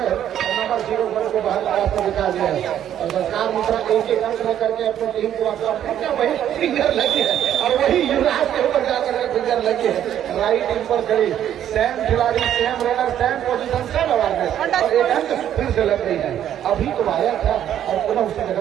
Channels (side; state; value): left; quieter; 10.6 dB